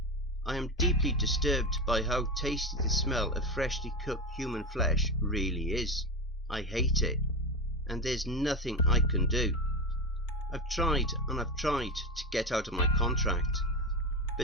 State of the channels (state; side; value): normal; both; correlation 0.18